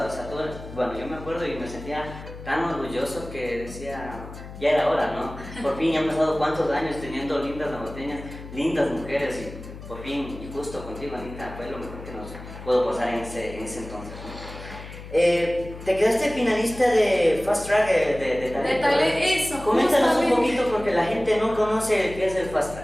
o sea, bueno, yo me acuerdo y me sentía tan orgulloso que decía, ya era hora, ¿no? Por fin, ya han pasado cuántos años teniendo lindas ambateñas, lindas mujeres, y por fin, y justo contigo, Anita, fue lo mejor que nos pudo pasar en ese entonces, ¿no? Te quedaste finalista de Fast Track de talento. Eso. Coméntanos un poquito porque la gente no conoce qué es el Fast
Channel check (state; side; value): noise; left; hum, 13 dB below the sound